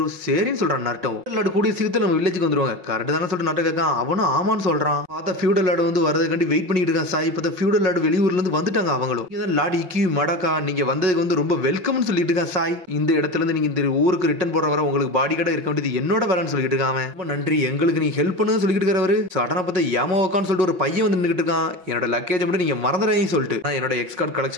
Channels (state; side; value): late; left; 5.4 ms